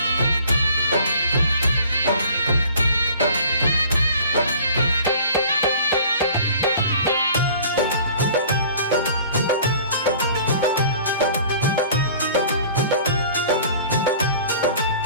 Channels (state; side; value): inverted; both; correlation -0.48